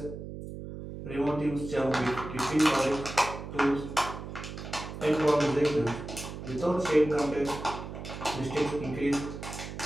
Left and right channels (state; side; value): noise; right; hum, 9 dB below the sound